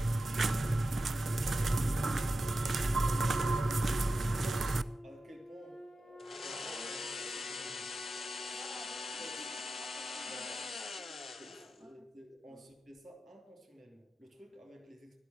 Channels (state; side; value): normal; both; correlation 0.92